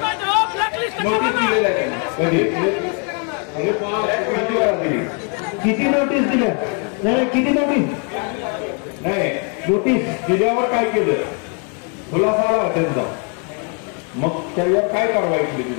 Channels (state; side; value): quieter; right; 38.6 dB